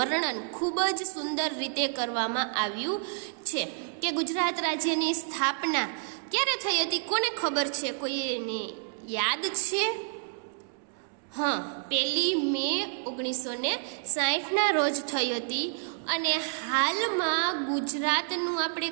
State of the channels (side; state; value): left; silent; digital silence